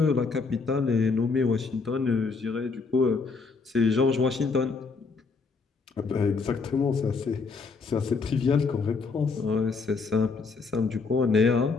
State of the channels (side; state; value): right; quieter; 4.5 dB